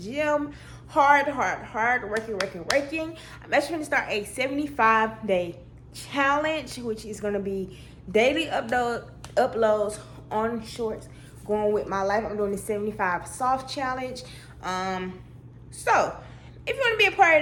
hard working. I'm actually going to start a 75-day challenge, which is going to be daily uploads on shorts, going with my life. I'm doing the 75 soft challenge. So if you want to be a part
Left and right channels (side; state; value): both; identical; correlation 1.00